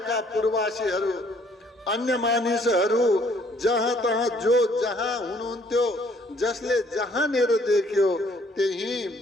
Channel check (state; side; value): normal; both; correlation 0.63